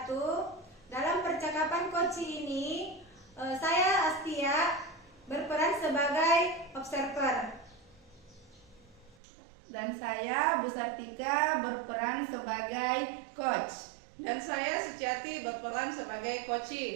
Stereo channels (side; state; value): left; drops out; at 9.2 s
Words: Dalam percakapan coaching ini, saya Astia berperan sebagai observer. Dan saya Bu Sartika berperan sebagai coach. Dan saya Suciati berperan sebagai